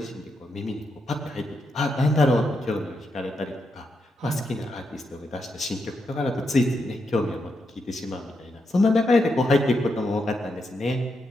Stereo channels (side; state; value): both; normal; correlation 0.83